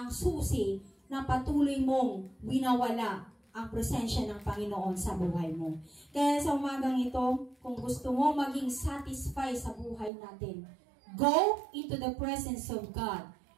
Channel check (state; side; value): drops out; left; at 10.1 s